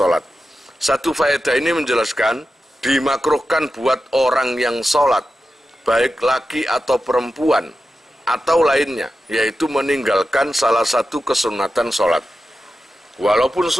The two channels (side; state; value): both; normal; correlation 0.91